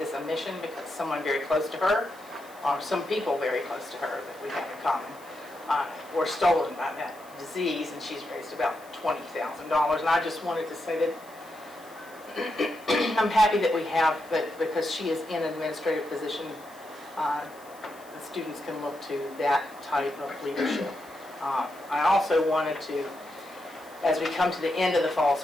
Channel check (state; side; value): noise; left; hiss, 24 dB below the sound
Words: a mission because someone very close to her, or some people very close to her that we have in common, were stolen by that disease, and she's raised about $20,000. And I just wanted to say that I'm happy that we have, but because she is in an administrative position, the students can look to that type of leadership. I also wanted to, as we come to the end of the fall